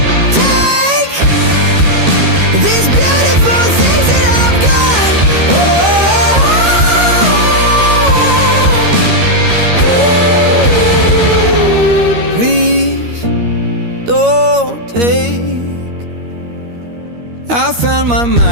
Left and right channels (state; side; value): late; left; 13 ms